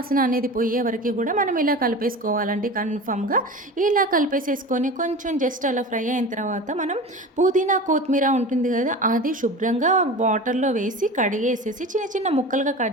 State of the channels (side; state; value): both; normal; correlation 0.32